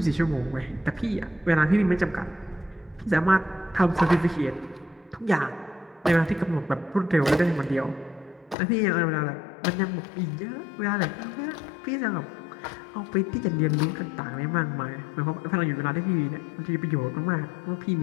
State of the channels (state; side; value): drops out; right; at 8.6 s